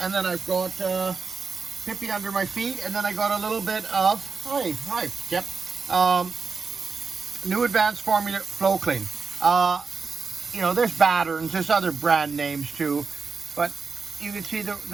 And then I've got Pippi under my feet. And then I got a little bit of, hi, Chip. New Advanced Formula Flow Clean. You know, there's Batterns, there's other brand names too, but you can see the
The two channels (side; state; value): left; quieter; 4.9 dB